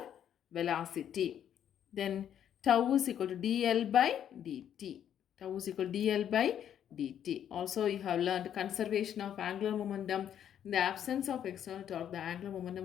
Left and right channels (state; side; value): quieter; right; 9.7 dB